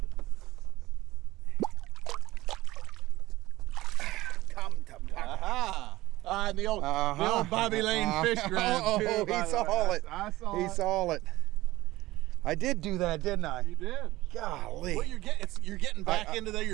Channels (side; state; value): left; quieter; 17.8 dB